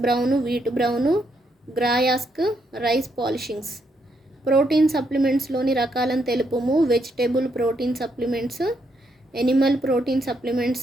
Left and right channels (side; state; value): both; normal; correlation 0.77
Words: బ్రౌన్, వీట్ బ్రౌన్, గ్రాయాస్క్, రైస్ పాలిషింగ్స్. ప్రోటీన్ సప్లిమెంట్స్లోని రకాలను తెలుపుము. Vegetable protein supplements, animal protein